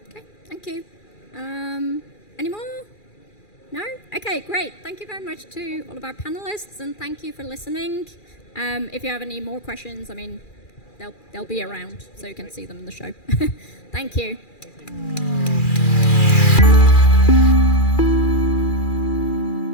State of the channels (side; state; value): right; late; 2.4 ms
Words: Okay, thank you. Any more? No? Okay, great. Thank you very much to all of our panelists, and thank you for listening. If you have any more questions, I mean, they'll be around, so you can see them in the show. Thank you.